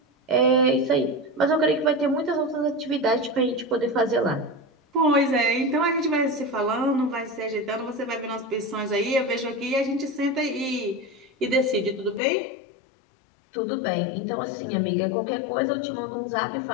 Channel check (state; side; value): drops out; right; at 12.2 s